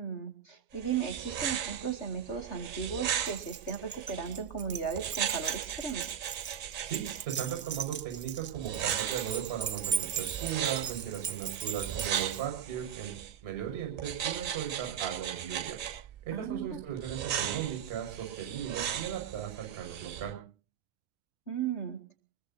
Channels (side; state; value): left; quieter; 8.3 dB